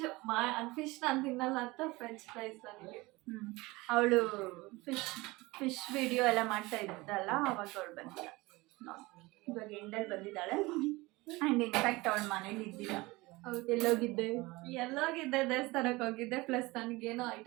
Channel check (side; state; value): left; quieter; 22.0 dB